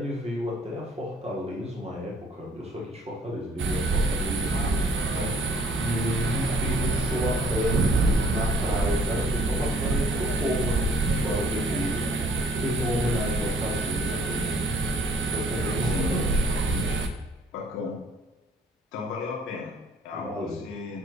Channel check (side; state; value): both; normal; correlation 0.58